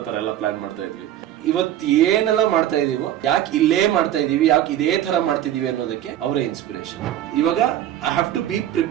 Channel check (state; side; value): quieter; left; 11.9 dB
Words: ತರ ಎಲ್ಲ ಪ್ಲಾನ್ ಮಾಡ್ತಾ ಇದ್ವಿ. ಇವತ್ತು ಏನೆಲ್ಲ ಮಾಡ್ತಾ ಇದೀವೋ ಯಾಕೆ ಇಲ್ಲೇ ಮಾಡ್ತಾ ಇದೀವಿ, ಯಾಕೆ ಇದೇ ತರ ಮಾಡ್ತಿದೀವಿ ಅನ್ನೋದಕ್ಕೆ ಅವರೇ ಇನ್ಸ್ಪಿರೇಷನ್. ಇವಾಗ I have to be